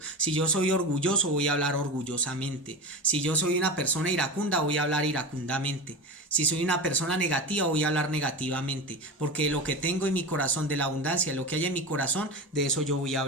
Si yo soy orgulloso, voy a hablar orgullosamente. Si yo soy una persona iracunda, voy a hablar iracundamente. Si soy una persona negativa, voy a hablar negativamente. Porque lo que tengo en mi corazón, de la abundancia, lo que hay en mi corazón, de eso yo voy a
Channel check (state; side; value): normal; both; correlation 0.26